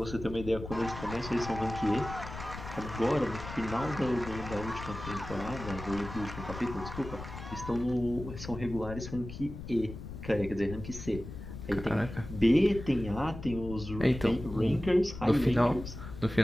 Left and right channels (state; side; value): noise; left; rumble, 10 dB below the sound